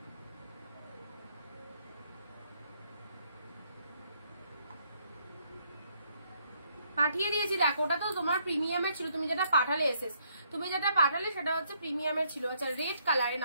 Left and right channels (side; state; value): both; inverted; correlation -0.71